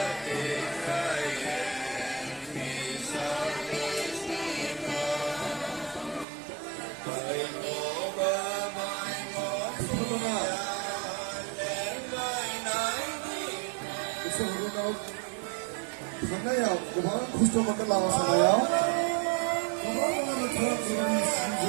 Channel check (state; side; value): drops out; left; at 6.2 s